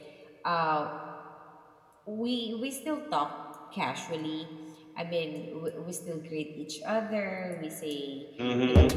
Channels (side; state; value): both; identical; correlation 1.00